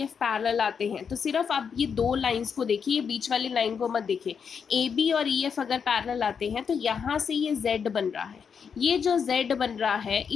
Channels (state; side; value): quieter; right; 6.6 dB